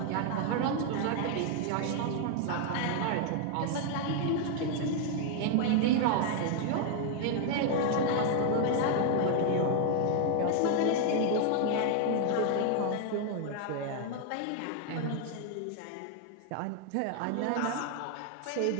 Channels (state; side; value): different; both; correlation 0.00